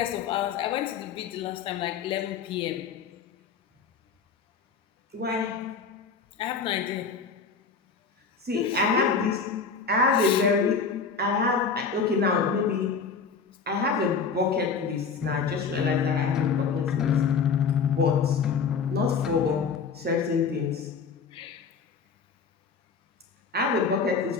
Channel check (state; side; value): quieter; right; 5.5 dB